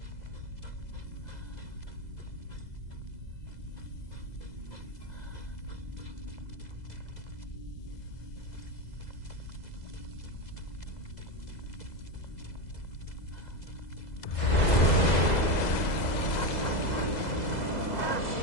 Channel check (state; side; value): late; right; 2.0 ms